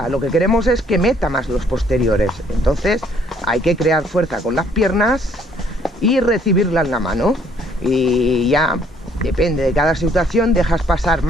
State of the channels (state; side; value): normal; both; correlation 0.64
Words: lo que queremos es que meta más los posteriores. Entonces hay que crear fuerza con las piernas y recibirla en la mano, y ya depende de cada situación, dejas pasar